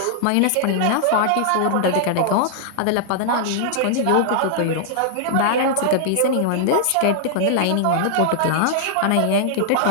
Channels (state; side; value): different; both; correlation -0.01